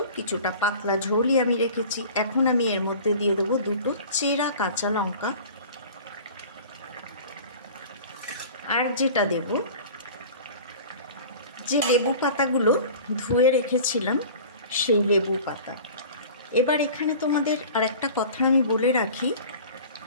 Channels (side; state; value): both; inverted; correlation -0.41